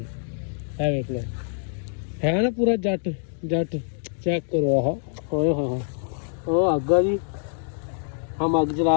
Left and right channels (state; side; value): silent; right; 62 dB below the other